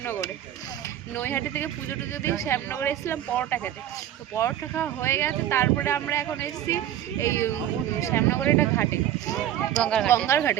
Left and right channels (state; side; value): quieter; left; 11.6 dB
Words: নৈহাটি থেকে পুজো টুজো দিয়ে শ্যামনগরে এসেছিলাম পরোটা খেতে। তো পরোটা খাওয়া হয়ে গেছে, তারপরে আমরা এখন এসেছি এই শ্যামনগরের একটা ঘাটে, গঙ্গার